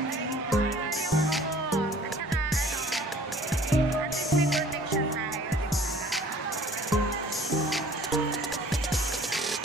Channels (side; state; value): both; normal; correlation 0.51